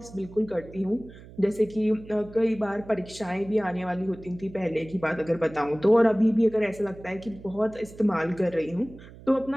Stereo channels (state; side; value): noise; right; hum, 18 dB below the sound